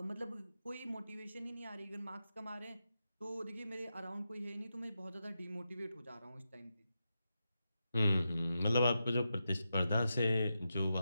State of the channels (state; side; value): inverted; both; correlation -0.88